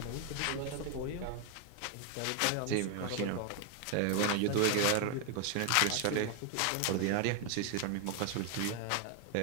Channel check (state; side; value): different; both; correlation 0.01